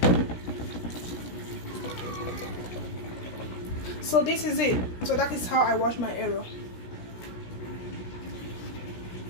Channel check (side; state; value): right; late; 16 ms